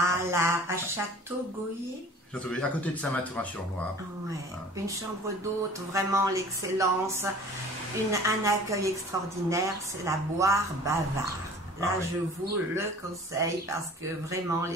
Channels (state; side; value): normal; both; correlation 0.45